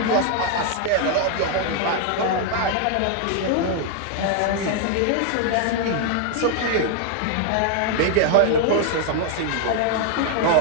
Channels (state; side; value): different; both; correlation 0.00